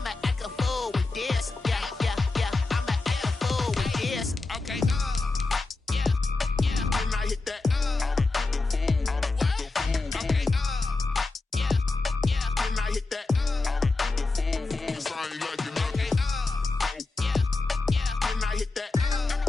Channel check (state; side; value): quieter; right; 3.5 dB